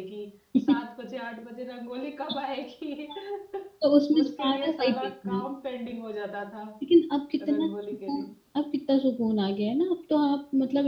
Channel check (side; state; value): both; identical; correlation 1.00